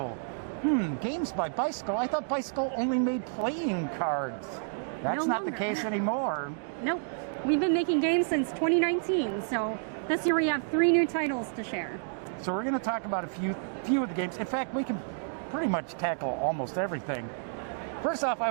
Games by Bicycle? I thought Bicycle only made playing cards. That's not the case anymore. Nope. We've been making games since 2019, so this year we have 3 new titles to share. So we're going to talk about a few of the games. In fact, we can pretty much tackle almost everything. First off, I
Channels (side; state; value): left; silent; digital silence